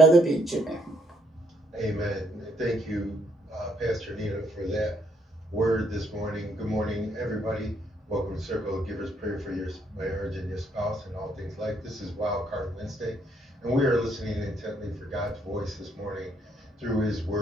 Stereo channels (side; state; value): both; normal; correlation 0.71